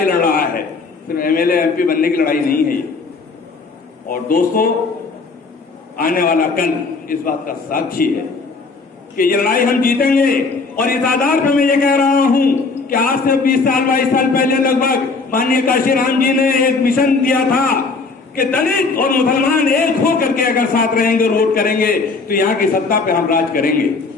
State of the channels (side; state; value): right; quieter; 4.2 dB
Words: लड़ रहा है। सिर्फ एमएलए एमपी बनने की लड़ाई नहीं है ये। और दोस्तों, आने वाला कल इस बात का साक्षी है कि ये लड़ाई हम जीतेंगे। और इस आधार पर मैं ये कह रहा हूं कि आज से 20 साल 22 साल पहले लगभग माननीय काशीराम जी ने एक मिशन दिया था कि दलित और मुसलमान एक होकर के अगर साथ रहेंगे, वोट करेंगे तो यहाँ की सत्ता पे हम राज करेंगे।